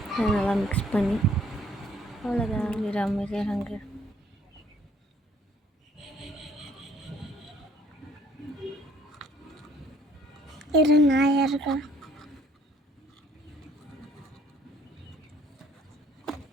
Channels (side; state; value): both; normal; correlation 0.60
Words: அதை நல்லா மிக்ஸ் பண்ணி அவ்வளோதான். அமைதியாக நாயா இருக்கா.